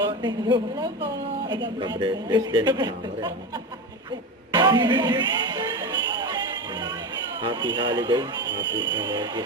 Thank you. Hello po. Ka-breathless din, kasama rin. Happy holiday, happy Merry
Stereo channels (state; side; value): normal; both; correlation 0.22